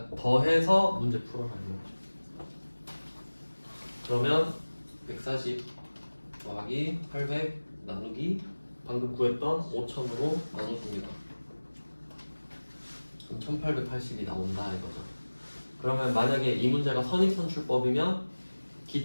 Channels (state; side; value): inverted; both; correlation -1.00